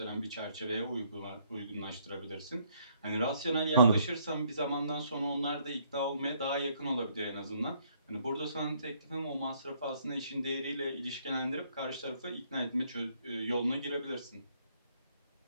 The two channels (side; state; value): both; inverted; correlation -0.68